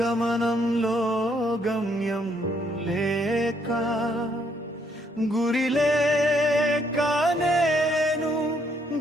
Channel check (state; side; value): normal; both; correlation 0.71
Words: గమ్యం లేక గురి లేక నేను